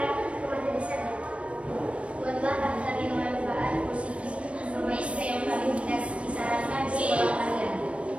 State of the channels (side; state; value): left; late; 0.061 ms